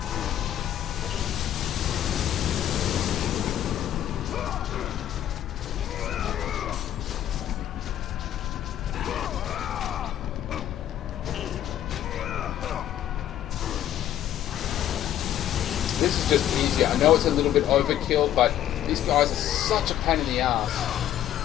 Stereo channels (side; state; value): right; quieter; 11.6 dB